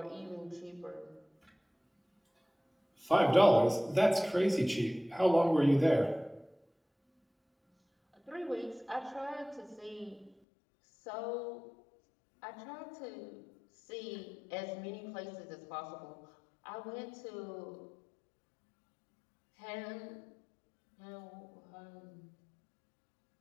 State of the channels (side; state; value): right; drops out; at 10.4 s